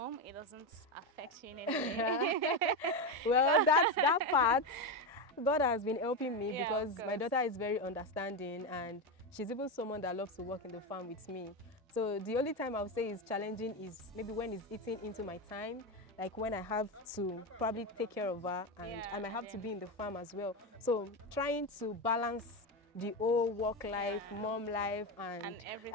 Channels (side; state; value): both; normal; correlation 0.12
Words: it doesn't affect you in any way. Well, that's that part. God has been helping me Yeah, because my daughter is very understanding, and she's even someone that loves to work in the farm with me. So the only time I would say is challenging is maybe when it's eating into my time, like when I have to probably take care of her, and I might have to be in the farm as well. So trying to balance the whole work life, mom life, and